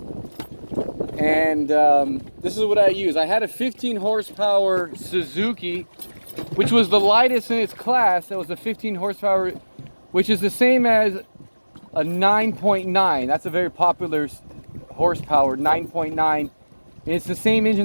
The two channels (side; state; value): both; inverted; correlation -1.00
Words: and this is what I use. I had a 15 horsepower Suzuki, which was the lightest in its class. That was a 15 horsepower, which is the same as a 9.9. That's a very popular horsepower, 9.9. And it's the same